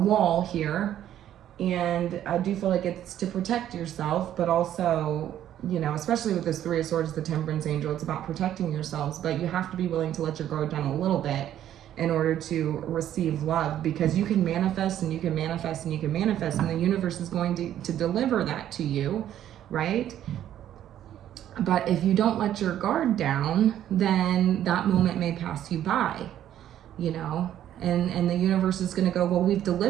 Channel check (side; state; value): left; quieter; 11.3 dB